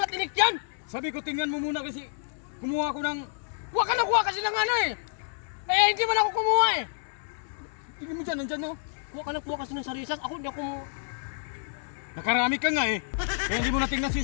yan. Sabi ko tingnan mo muna kasi kumuha ko ng... Huwag ka nakuha kasi ng ano eh. Eh, hindi man ako kumuha eh. Tingnan mo dyan, nandyan no. Huwag ka nakuha kasi ng sarisas. Ako hindi ako... Nakarami ka nga eh. Kaya hindi mo natingnan si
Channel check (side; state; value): right; silent; 59 dB below the other